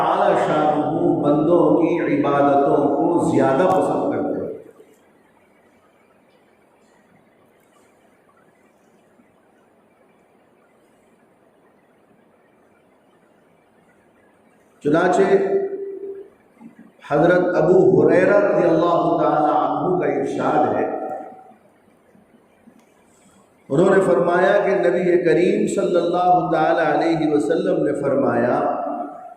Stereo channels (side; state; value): both; identical; correlation 1.00